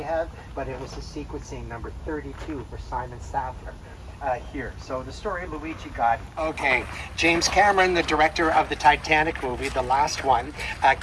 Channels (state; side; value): identical; both; correlation 1.00